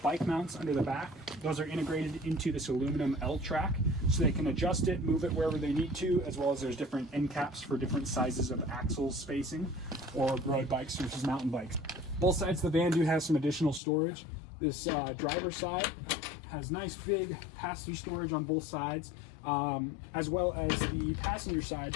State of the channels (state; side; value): drops out; right; at 13.8 s